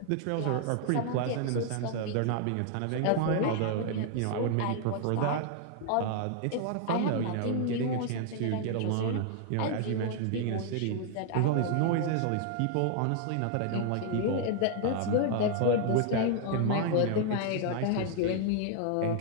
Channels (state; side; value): different; both; correlation 0.00